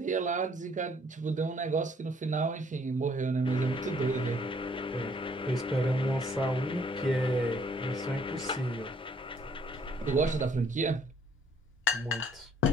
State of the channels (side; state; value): both; normal; correlation 0.63